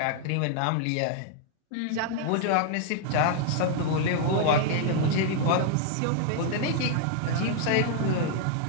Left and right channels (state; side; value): different; both; correlation 0.00